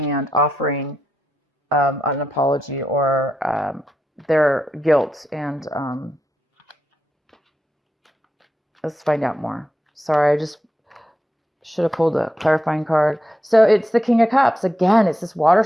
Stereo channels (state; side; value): normal; both; correlation 0.86